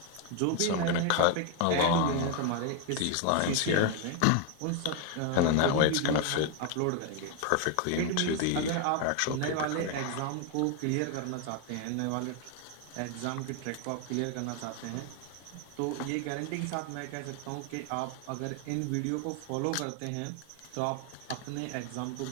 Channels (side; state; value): both; different; correlation 0.01